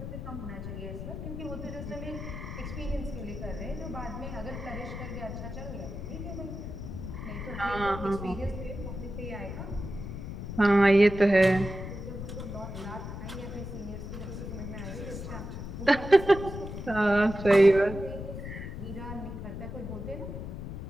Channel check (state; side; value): noise; left; rumble, 8 dB below the sound